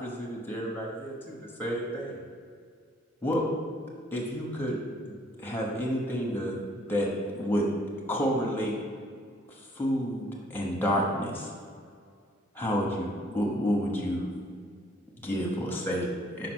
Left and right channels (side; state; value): both; normal; correlation 0.62